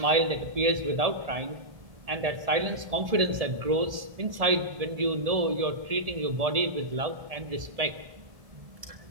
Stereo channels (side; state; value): left; late; 1.7 ms